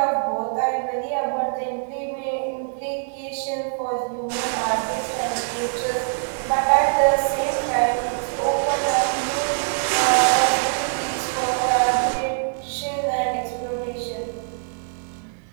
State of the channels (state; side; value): silent; left; digital silence